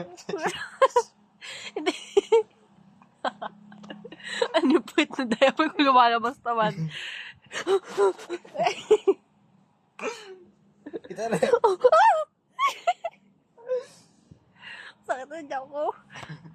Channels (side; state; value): both; identical; correlation 1.00